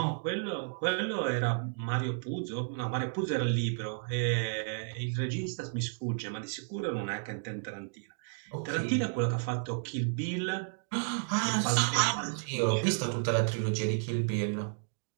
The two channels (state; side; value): silent; left; digital silence